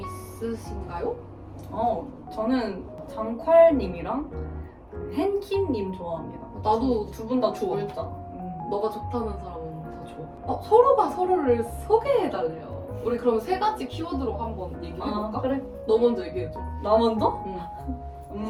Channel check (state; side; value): identical; both; correlation 1.00